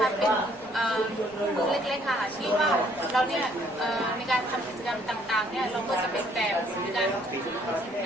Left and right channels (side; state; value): left; noise; rumble, 26 dB below the sound